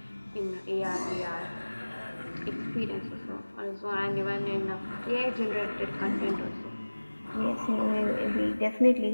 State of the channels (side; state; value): both; inverted; correlation -1.00